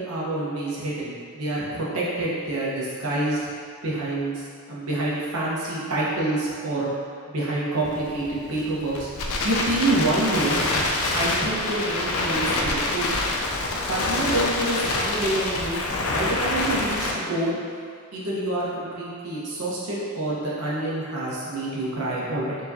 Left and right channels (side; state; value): both; normal; correlation 0.19